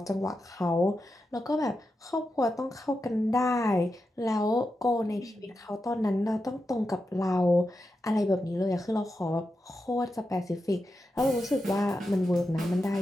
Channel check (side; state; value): both; normal; correlation 0.89